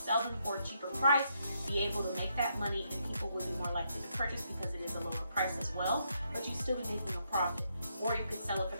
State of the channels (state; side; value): inverted; both; correlation -0.78